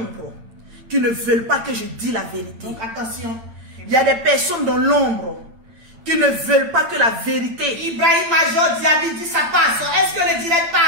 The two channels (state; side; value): late; left; 8.9 ms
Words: qui ne veulent pas que je dise la vérité. Donc attention. Il y a des personnes dans l'ombre qui ne veulent pas que la vérité. Ibrahim Major Diaby dit ça passe. Est-ce que le direct